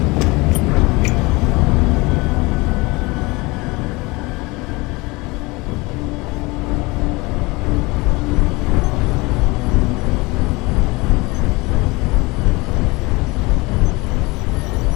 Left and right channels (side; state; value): right; quieter; 23.9 dB